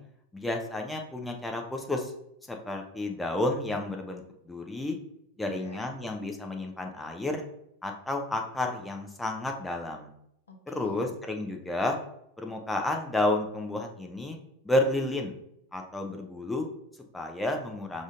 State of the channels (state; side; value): normal; both; correlation 0.57